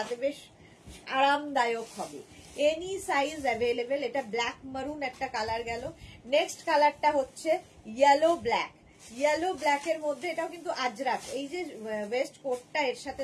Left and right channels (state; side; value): identical; both; correlation 1.00